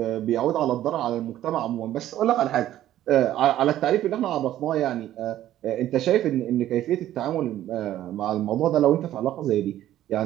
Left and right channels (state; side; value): quieter; left; 12.9 dB